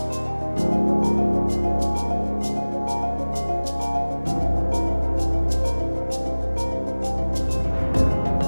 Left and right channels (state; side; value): inverted; both; correlation -1.00